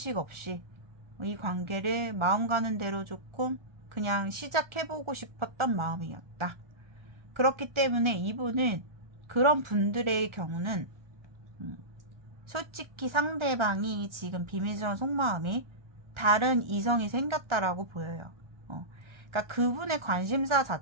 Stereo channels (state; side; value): late; left; 1.4 ms